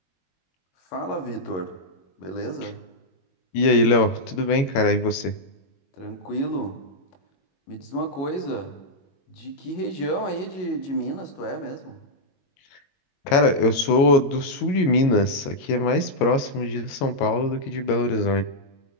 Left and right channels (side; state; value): right; late; 21 ms